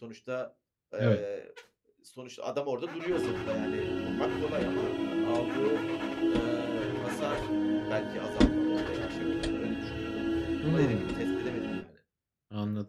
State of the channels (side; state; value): both; identical; correlation 1.00